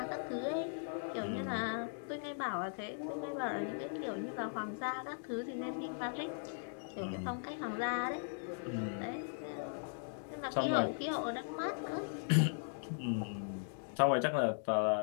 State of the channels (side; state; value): right; silent; digital silence